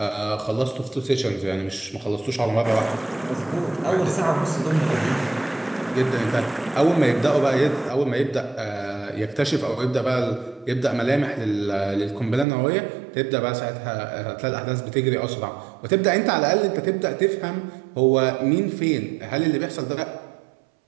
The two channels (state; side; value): drops out; left; at 12.5 s